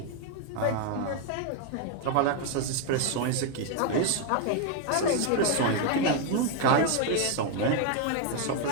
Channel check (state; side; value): different; both; correlation 0.01